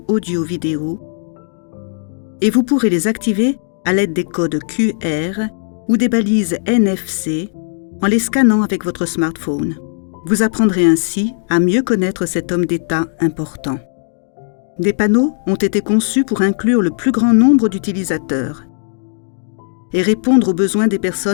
audio-vidéo et vous pourrez les activer à l'aide des codes QR ou des balises NFC en les scannant avec votre smartphone. Vous apprendrez ainsi à mieux connaître cet homme d'État important. Des panneaux ont été conçus pour inclure le plus grand nombre d'utilisateurs et répondre aux besoins des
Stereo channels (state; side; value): silent; right; digital silence